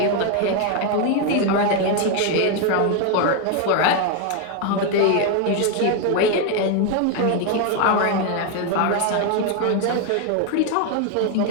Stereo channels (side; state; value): both; different; correlation 0.01